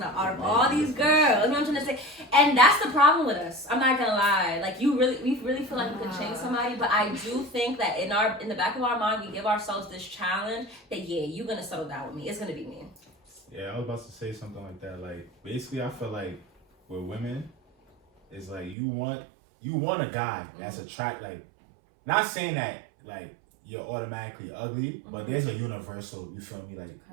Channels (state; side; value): drops out; left; at 18.8 s